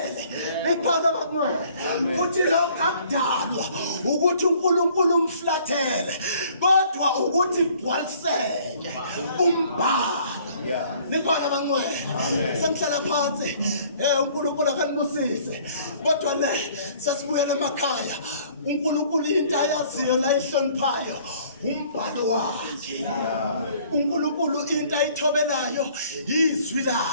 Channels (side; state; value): both; inverted; correlation -0.57